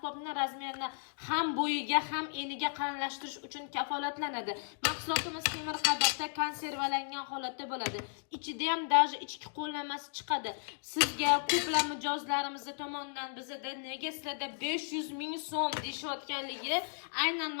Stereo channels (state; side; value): silent; right; digital silence